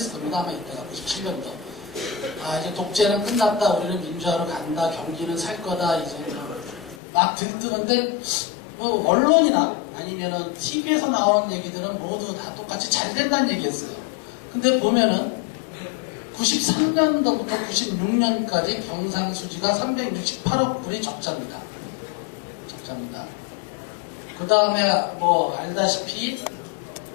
겁니다. 아마 이때가 97년도. 이제 독재는 끝났다. 우리는 민주화로 간다. 경기는 살 거다. 이제 막 들뜨는데 뭐 언론이나 아니면은 TV에서 나오는 얘기들은 모두 다 똑같이 잘 된다는 얘기였어요. 근데 보면은 93년도부터 96년까지 경상수지가 368억 불이 적자입니다. 그 다음에 뭐 알다시피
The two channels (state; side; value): drops out; right; at 7.0 s